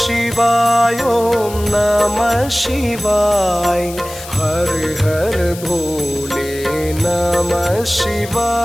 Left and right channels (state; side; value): noise; left; hiss, 14 dB below the sound